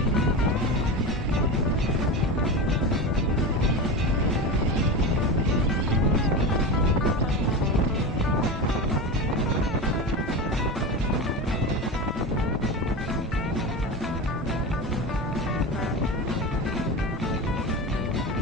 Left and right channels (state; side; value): normal; both; correlation 0.23